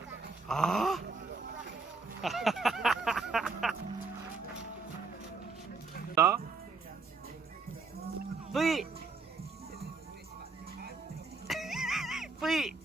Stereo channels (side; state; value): left; quieter; 4.1 dB